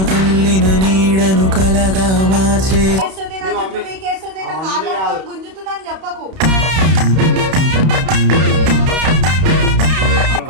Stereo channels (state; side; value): late; left; 32 ms